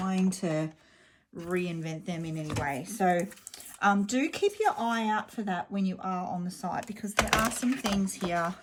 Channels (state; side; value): identical; both; correlation 1.00